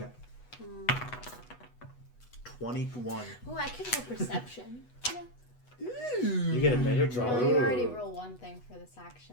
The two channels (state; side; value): late; right; 8.1 ms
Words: 21. Oh, I could roll perception. You get a better draw. Well, you already roll one thing for this